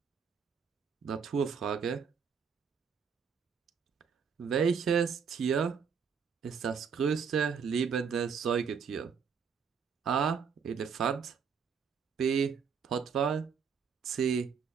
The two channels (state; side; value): quieter; left; 6.5 dB